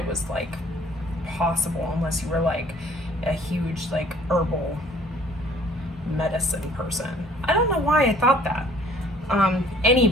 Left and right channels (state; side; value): normal; both; correlation 0.56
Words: was like possible unless you were like a huge like herbal medicine person. I don't know why I thought that.